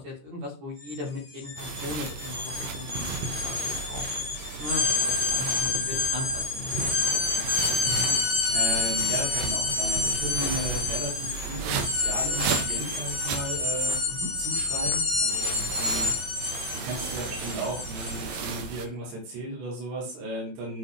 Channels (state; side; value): late; left; 19 ms